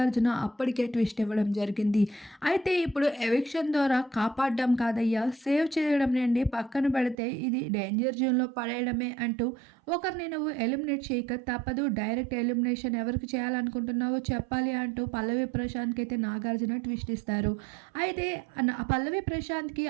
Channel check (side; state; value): left; drops out; at 7.2 s